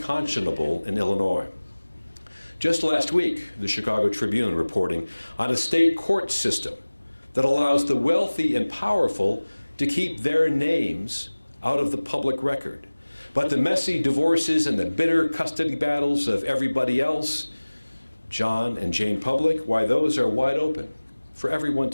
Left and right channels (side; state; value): both; inverted; correlation -1.00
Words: in Illinois. Just last week, the Chicago Tribune reporting on a state court system that allows the wealthy and powerful to keep their names out of the public record. But the messy divorces and the bitter custody battles of everybody else, John and Jane Public, why, those are wide open for everyone